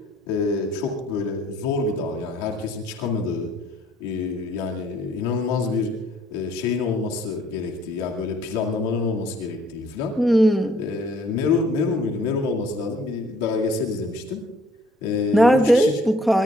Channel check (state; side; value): normal; both; correlation 0.60